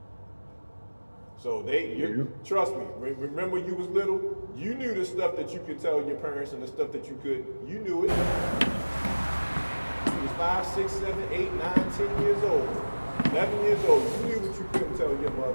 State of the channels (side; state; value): both; inverted; correlation -1.00